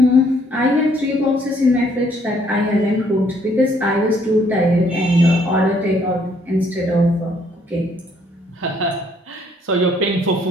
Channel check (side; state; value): both; normal; correlation 0.66